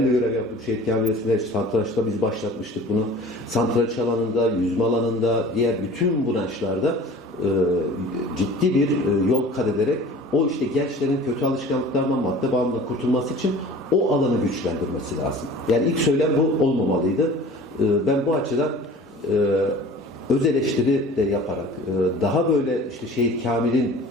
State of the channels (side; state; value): both; normal; correlation 0.43